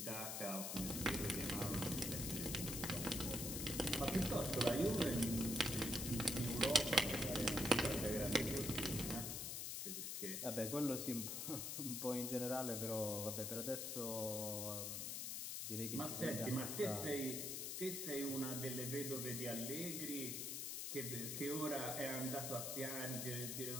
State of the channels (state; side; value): noise; left; hiss, 3 dB below the sound